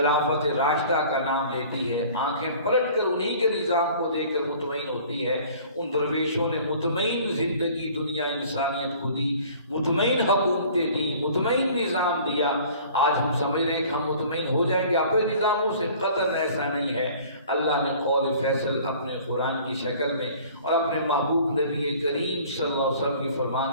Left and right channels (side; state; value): both; inverted; correlation -0.49